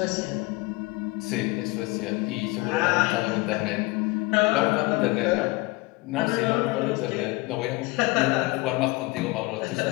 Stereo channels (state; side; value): quieter; right; 23.0 dB